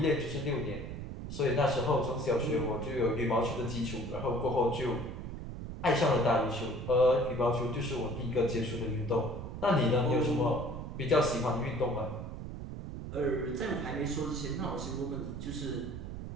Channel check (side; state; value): right; noise; rumble, 8 dB below the sound